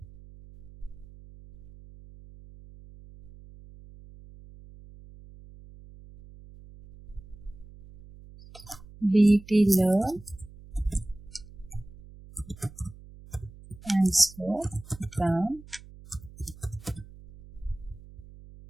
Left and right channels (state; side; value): noise; right; hum, 19 dB below the sound